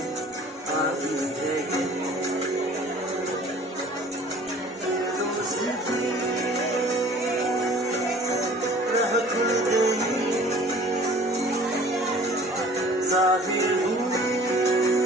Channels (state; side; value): normal; both; correlation 0.49